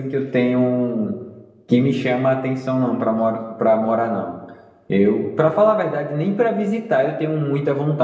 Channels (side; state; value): both; identical; correlation 1.00